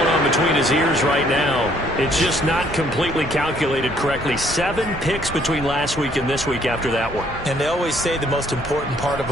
on between his ears right now, it's just not completely calculated correctly. 7 picks between last week and this week after that one. And they always say the most important part of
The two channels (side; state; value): both; normal; correlation 0.64